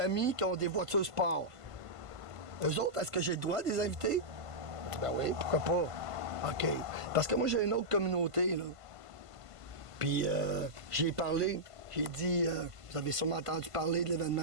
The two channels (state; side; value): late; left; 1.5 ms